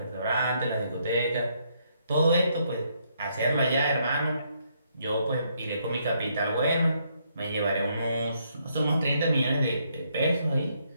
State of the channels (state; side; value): inverted; both; correlation -0.73